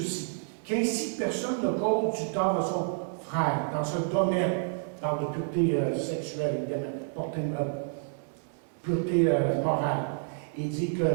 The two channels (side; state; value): left; silent; digital silence